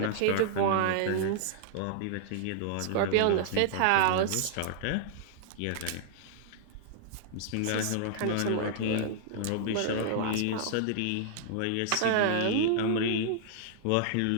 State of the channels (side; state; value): both; different; correlation -0.01